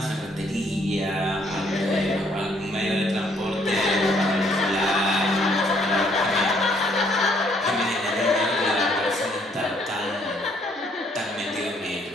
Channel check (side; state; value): both; normal; correlation 0.67